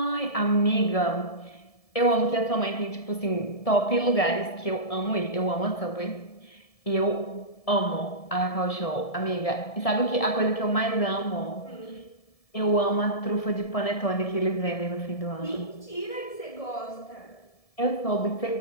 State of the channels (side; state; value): right; late; 1.7 ms